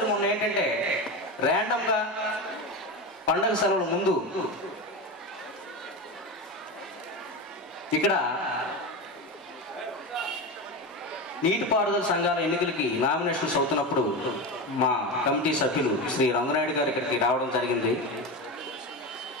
మొన్న ఏంటంటే ర్యాండమ్గా పండగ సెలవుల ముందు ఇక్కడ నీటిపారుదల సంఘాల ఎన్నికలకి నామినేషన్స్ అవుతున్నప్పుడు మా కమిటీ సభ్యులు శ్రీ రంగనాయుడు గారు ఇక్కడికి రావడం జరిగింది.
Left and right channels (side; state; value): both; normal; correlation 0.21